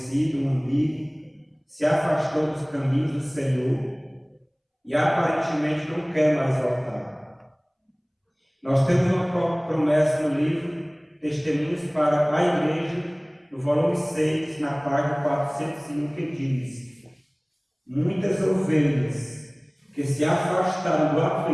um amigo se afastou dos caminhos do Senhor e aparentemente não quer mais voltar. Nós temos uma promessa no livro Testemunhos para a Igreja, no volume 6, na página 401, que diz: muitas ovelhas que se afastaram do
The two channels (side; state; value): both; identical; correlation 1.00